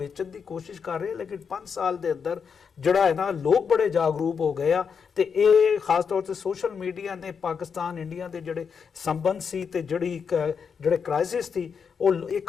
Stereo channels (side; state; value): right; quieter; 6.3 dB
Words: ਦੀ ਕੋਸ਼ਿਸ਼ ਕਰ ਰਹੇ ਲੇਕਿਨ 5 ਸਾਲ ਦੇ ਅੰਦਰ ਜਿਹੜਾ ਹੈ ਨਾ ਲੋਕ ਬੜੇ ਜਾਗਰੂਕ ਹੋ ਗਏ ਆ ਤੇ ਇਹ ਖਾਸ ਤੌਰ ਤੇ ਸੋਸ਼ਲ ਮੀਡੀਆ ਨੇ ਪਾਕਿਸਤਾਨ ਇੰਡੀਆ ਦੇ ਜਿਹੜੇ ਸੰਬੰਧ ਸੀ ਤੇ ਜਿਹੜੇ ਕ੍ਰਾਈਸਿਸ ਸੀ ਉਹ